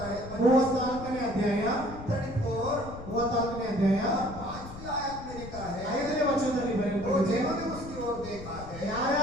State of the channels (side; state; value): left; noise; rumble, 13 dB below the sound